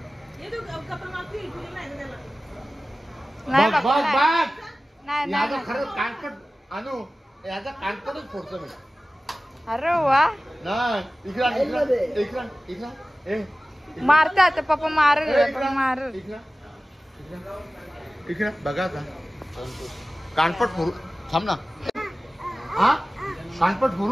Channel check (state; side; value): normal; both; correlation 0.97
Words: नाही नाही. खरंच कानपट आणू, याचा कानपटच फोडतो मी. अरे वा, नाही इकडा मारते आता पप्पा. मार इकडे बघा आता. कानपट फोडू. थांब ना. हा, कानपट